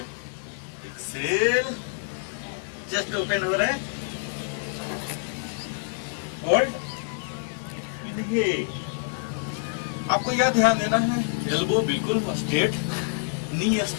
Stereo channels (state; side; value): silent; right; digital silence